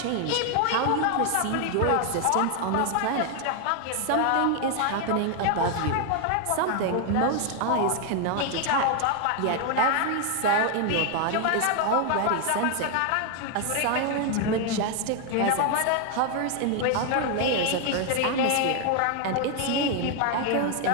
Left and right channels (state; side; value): different; both; correlation 0.00